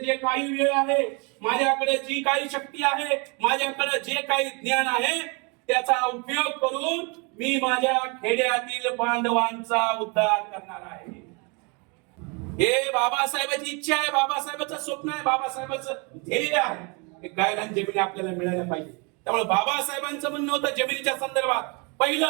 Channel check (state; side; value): quieter; left; 31.9 dB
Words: काही वेळ आहे, माझ्याकडे जी काही शक्ती आहे, माझ्याकडे जे काही ज्ञान आहे त्याचा उपयोग करून मी माझ्या खेड्यातील बांधवांचा उद्धार करणार आहे. हे बाबासाहेबांची इच्छा आहे, बाबासाहेबांचं स्वप्न आहे, बाबासाहेबांचं ध्येय आहे. हे गायरान जमिनी आपल्याला मिळायला पाहिजे. त्यामुळे बाबासाहेबांचं म्हणणं होतं जमिनीच्या संदर्भात